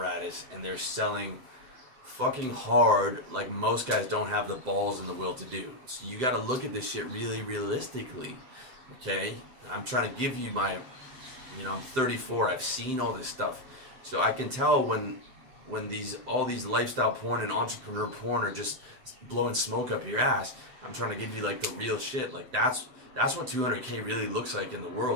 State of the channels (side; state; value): left; late; 7.7 ms